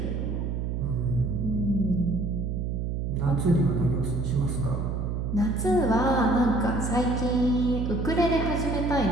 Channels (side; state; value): right; noise; hum, 2 dB below the sound